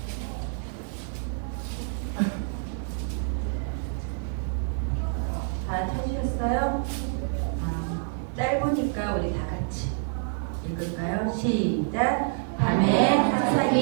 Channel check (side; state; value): left; silent; 60 dB below the other